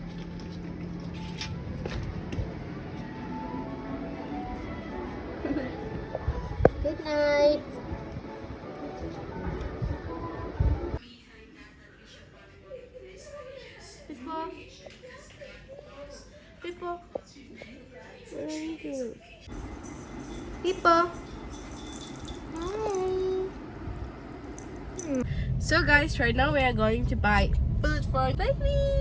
Good night. Pipa. Where are you? Pipa. Hi. So guys, right now we are going to buy food for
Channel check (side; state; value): both; identical; correlation 1.00